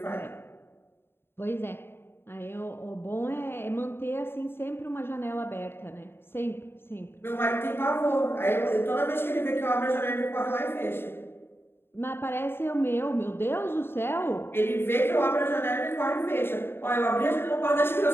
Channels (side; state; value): right; late; 0.11 ms